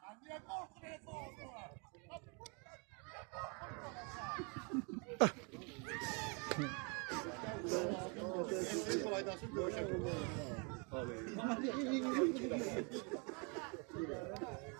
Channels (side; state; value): left; quieter; 34.3 dB